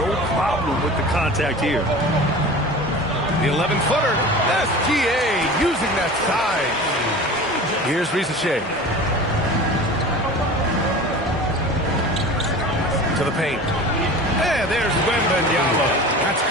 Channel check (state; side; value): normal; both; correlation 0.37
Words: problem with the contact here. The 11-footer. SGA using that size. Here's Risa Shea. To the paint. And there's Wembanyama. That's